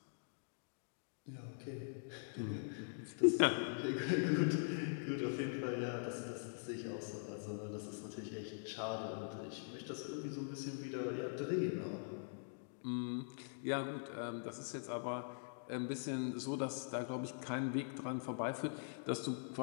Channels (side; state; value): right; silent; digital silence